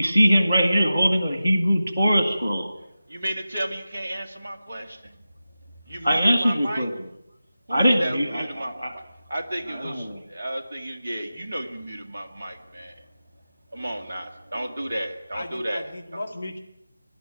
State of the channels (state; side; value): inverted; both; correlation -0.94